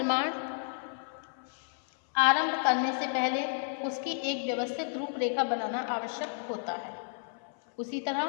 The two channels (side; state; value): right; silent; 57 dB below the other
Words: आरंभ करने से पहले उसकी एक व्यवस्थित रूपरेखा बनाना आवश्यक होता है, उसी तरह